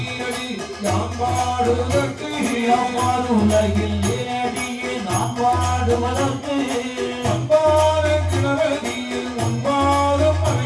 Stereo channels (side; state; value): both; identical; correlation 1.00